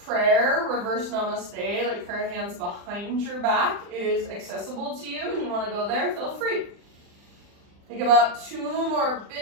prayer, reverse namaste, like prayer hands behind your back, is accessible to you and you want to go there, feel free. Take about 2 more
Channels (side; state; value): left; late; 40 ms